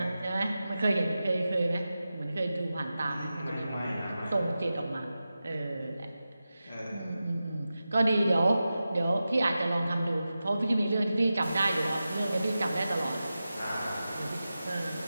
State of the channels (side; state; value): both; inverted; correlation -0.93